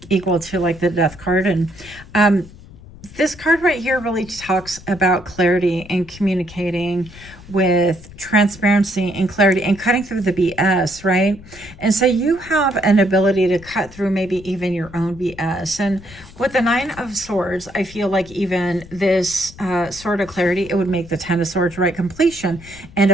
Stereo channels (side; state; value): left; noise; rumble, 19 dB below the sound